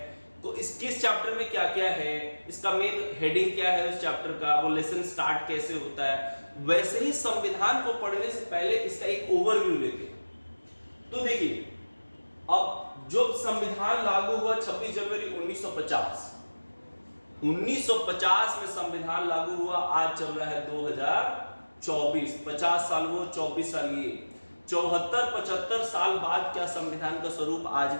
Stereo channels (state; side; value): inverted; both; correlation -1.00